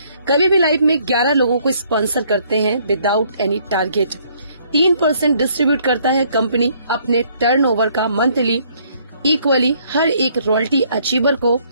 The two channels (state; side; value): inverted; both; correlation -0.65